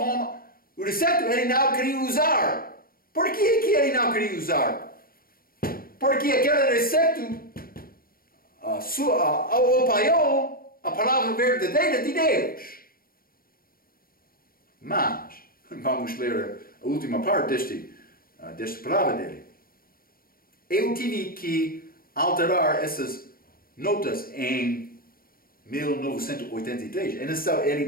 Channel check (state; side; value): late; right; 0.43 ms